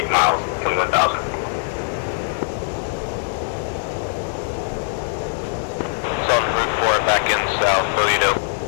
miles, 21,000. Sultan Route 4 back in south, Bogadope.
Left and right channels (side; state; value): right; silent; 60 dB below the other